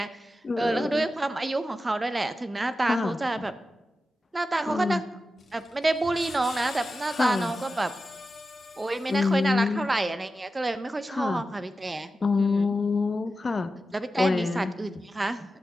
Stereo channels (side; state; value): both; normal; correlation 0.91